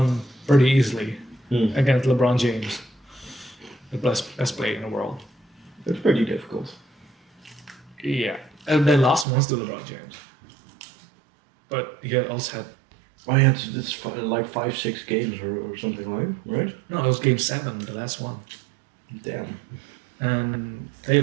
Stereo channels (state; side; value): drops out; left; at 9.2 s